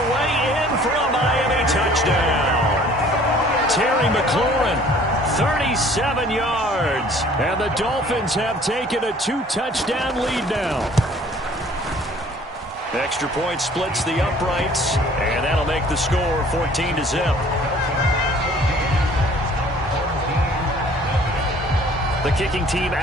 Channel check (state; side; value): normal; both; correlation 0.54